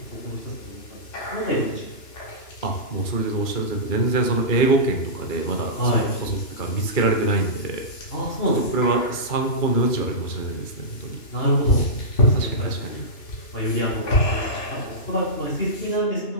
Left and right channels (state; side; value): late; right; 2.9 ms